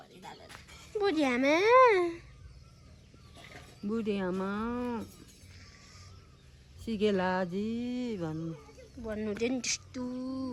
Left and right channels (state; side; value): identical; both; correlation 1.00